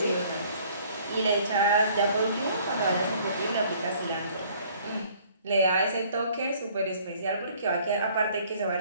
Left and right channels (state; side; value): inverted; both; correlation -0.57